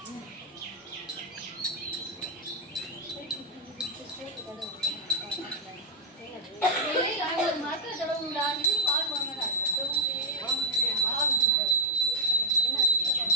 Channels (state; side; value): normal; both; correlation -0.04